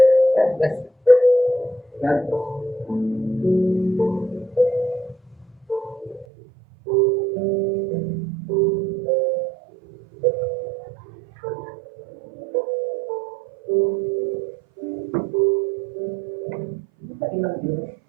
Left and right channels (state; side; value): drops out; left; at 6.2 s